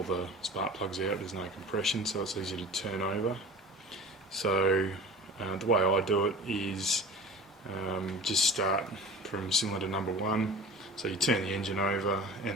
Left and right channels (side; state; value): both; normal; correlation 0.38